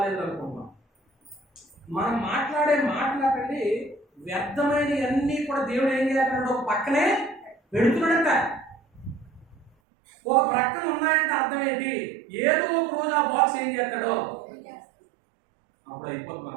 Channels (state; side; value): drops out; left; at 9.7 s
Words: అనుకున్నాం. మనం మాట్లాడే మాట్లాడండి వ్యర్థమైనవి అన్నీ కూడా దేవుడు ఏం చేస్తున్నాడు? ఒక పక్కనే పెడుతున్నాడంట. ఒక ప్రక్కన ఉన్నాయంటే అర్థం ఏంటి? ఏదో ఒక రోజు ఆ బాక్స్ ఏం చేస్తాడో అప్పుడు అయిపోతుంది మన